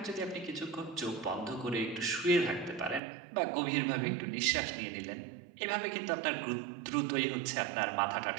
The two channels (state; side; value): drops out; left; at 3.0 s